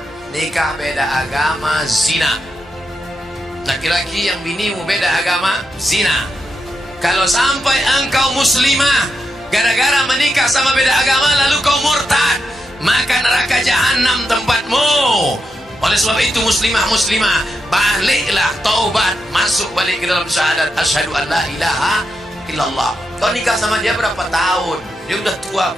Nikah beda agama zina. Laki-laki yang binimu beda agama, zina. Kalau sampai engkau muslimah gara-gara menikah sama beda agama lalu kau murtad, maka neraka jahanam tempatmu. Oleh sebab itu muslimah, baliklah, taubat, masuk balik ke dalam syahadat asyhadu an la ilaha illallah. Kau nikah sama dia berapa tahun? Dia udah tua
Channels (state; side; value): normal; both; correlation 0.85